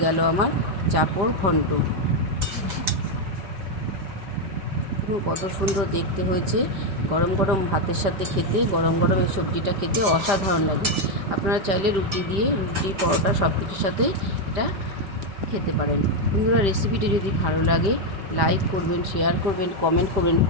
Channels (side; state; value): left; late; 5.1 ms